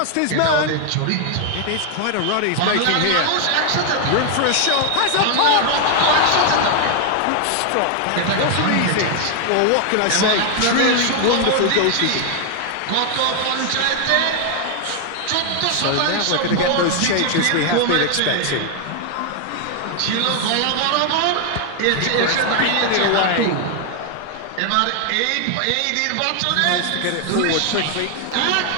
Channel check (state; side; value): different; both; correlation 0.00